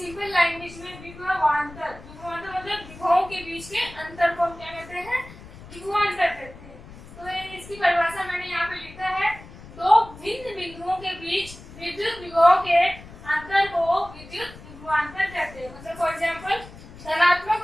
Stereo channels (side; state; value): left; noise; rumble, 17 dB below the sound